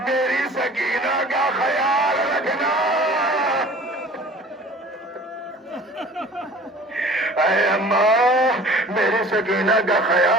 میری سکینہ کا خیال رکھنا۔ اے اماں میری سکینہ کا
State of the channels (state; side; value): normal; both; correlation 0.45